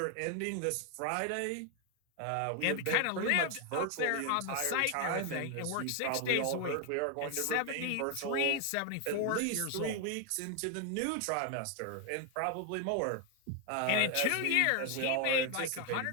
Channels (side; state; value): both; different; correlation 0.01